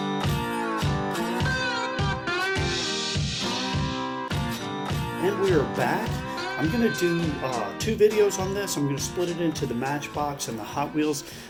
And we are back. I'm going to do two videos on this. I'm going to split it into the Matchbox and the Hot Wheels.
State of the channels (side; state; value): both; identical; correlation 1.00